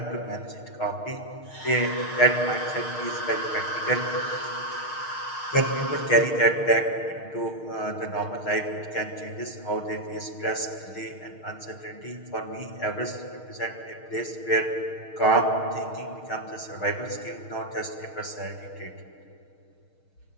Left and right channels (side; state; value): right; late; 6.5 ms